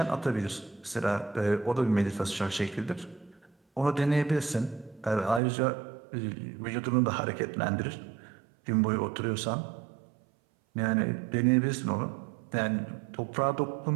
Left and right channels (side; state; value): left; drops out; at 5.4 s